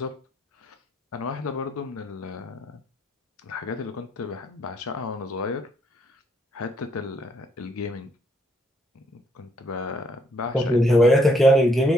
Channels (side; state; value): both; normal; correlation 0.71